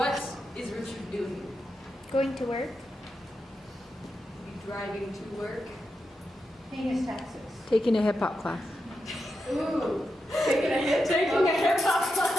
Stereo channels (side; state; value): both; normal; correlation 0.87